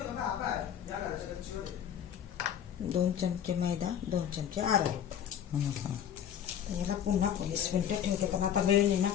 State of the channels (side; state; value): right; quieter; 9.4 dB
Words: 2 चमचे मैदा, 2 चमचे अरारोट. याला पुन्हा 20 मिनिटं ठेवते कारण आता वेळ नाही ना